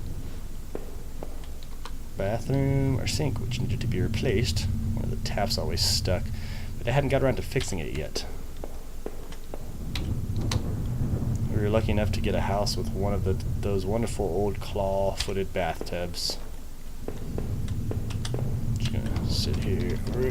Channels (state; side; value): identical; both; correlation 1.00